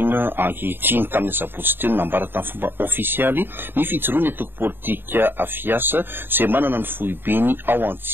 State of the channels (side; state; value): left; late; 0.099 ms